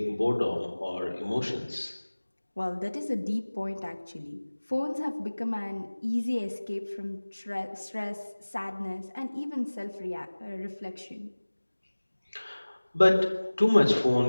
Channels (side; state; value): both; inverted; correlation -1.00